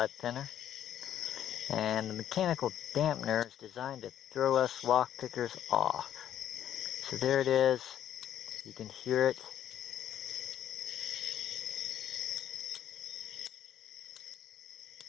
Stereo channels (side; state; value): right; quieter; 10.7 dB